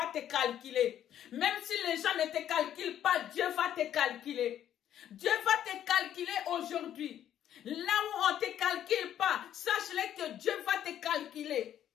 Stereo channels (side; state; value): right; quieter; 10.8 dB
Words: te calculer. Même si les gens ne te calculent pas, Dieu va te calculer. Dieu va te calculer aujourd'hui. Là où on ne te calcule pas, sache-le que Dieu va te calculer.